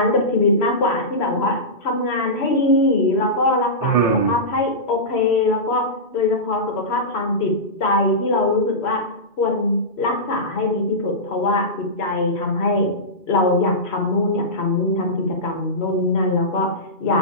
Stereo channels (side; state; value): right; late; 2.4 ms